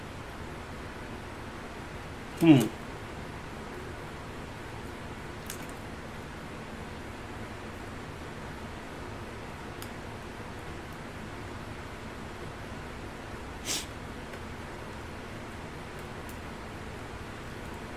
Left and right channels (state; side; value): identical; both; correlation 1.00